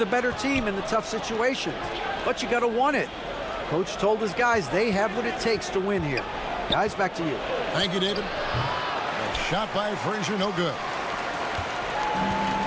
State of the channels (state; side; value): identical; both; correlation 1.00